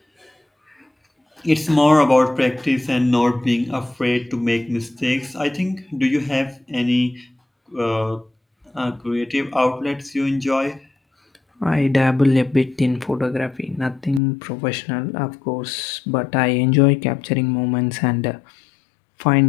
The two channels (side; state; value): right; drops out; at 14.2 s